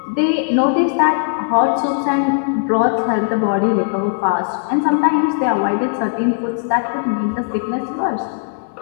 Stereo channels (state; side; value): silent; right; digital silence